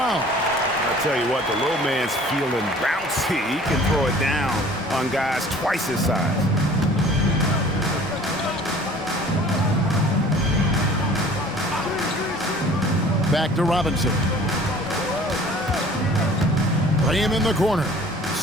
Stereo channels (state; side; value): normal; both; correlation 0.49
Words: I'll tell you what, the little man's feeling bouncy. He can throw it down on guys twice his size. Back to Robinson. Play him in the corner.